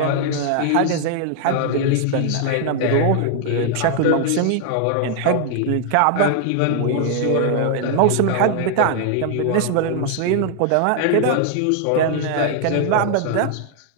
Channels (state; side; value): different; both; correlation 0.00